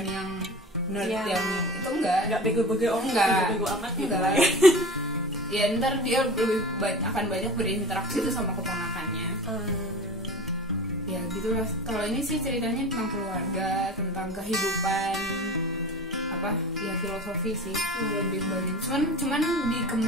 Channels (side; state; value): both; normal; correlation 0.35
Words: yang nerd yang itu enggak bego-bego bego amat gitu enggak. Ya ntar dia lebih akan banyak berinteraksi tuh sama keponakannya. Ya gitu lah. Kalau ini sih ceritanya tentang keluarga, tentang kehidupan, ya filosofi sih lebih banyak. Cuman